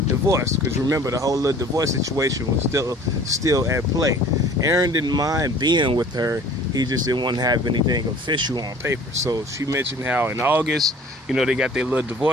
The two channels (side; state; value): both; normal; correlation 0.48